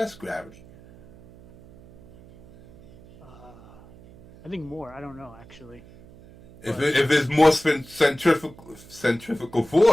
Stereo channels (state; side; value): noise; right; hum, 22 dB below the sound